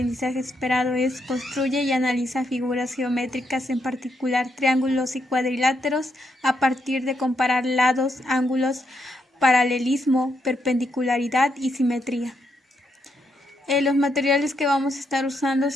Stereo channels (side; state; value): both; normal; correlation 0.79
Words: esperado es construye y analiza figuras geométricas, en particular triángulos y cuadriláteros, a partir de comparar lados, ángulos, paralelismo, perpendicularidad y simetría. Los materiales que vamos a estar usando